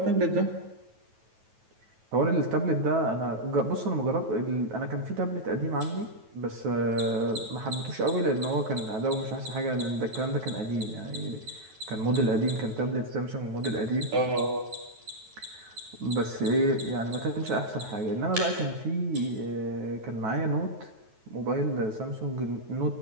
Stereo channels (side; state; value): left; late; 9.2 ms